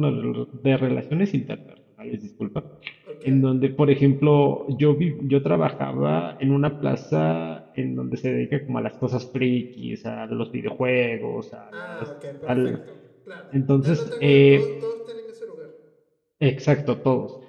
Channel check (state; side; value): identical; both; correlation 1.00